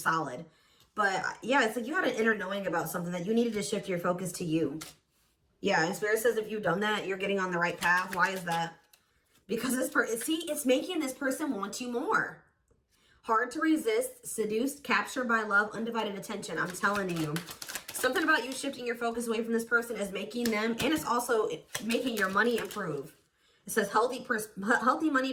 But yeah, it's like you had an inner knowing about something that you needed to shift your focus to you. Yeah, and Spirit says if you've done that, you're getting on the right path. Why is that? Because this person, see, it's making this person want you more. Hard to resist, seduced, captured by love, undivided attention. I'm telling you. Something about you shifting your focus away from this person is making them, and it's also making your money improve. It says healthy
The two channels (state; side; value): identical; both; correlation 1.00